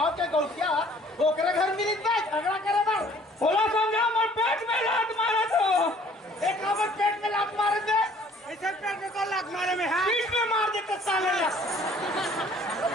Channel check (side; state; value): both; normal; correlation 0.56